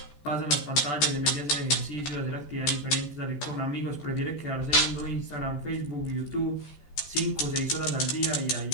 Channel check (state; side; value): late; right; 14 ms